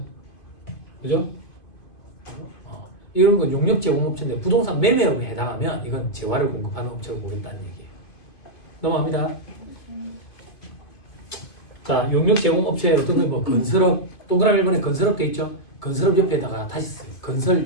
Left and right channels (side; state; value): right; late; 2.5 ms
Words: 그죠? 이런 건 용역 제공업체인데 부동산 매매업에 해당하면 이건 재화를 공급하는 업체로 보인다는 얘기예요. 넘어갑니다. 자, 용역 제공업체 어떤 거 뭐 건설업 동그라미 1번에 건설업 돼 있죠. 건설업 옆에다가 다시 쓰세요. 건설